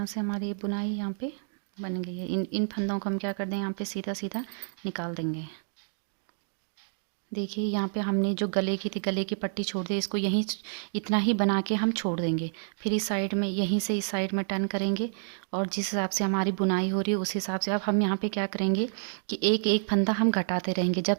से हमारी ये बुनाई यहाँ पे बन गई है। इन फंदों को हम क्या कर दें, यहाँ पे सीधा सीधा निकाल देंगे। देखिए यहाँ पे हमने जो गले की थी, गले की पट्टी छोड़ दी, इसको यहीं इतना ही बना के हम छोड़ देंगे। फिर इस साइड में यहीं से इस साइड में टर्न करेंगे और जिस हिसाब से हमारी बुनाई हो रही है उस हिसाब से अब हम यहाँ पे क्या करेंगे कि एक एक फंदा हम घटाते रहेंगे जब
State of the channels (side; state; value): left; silent; digital silence